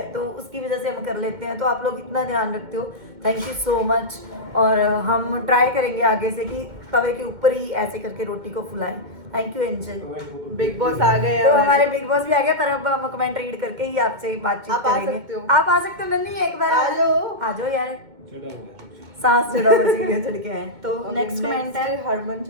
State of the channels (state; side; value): late; left; 2.2 ms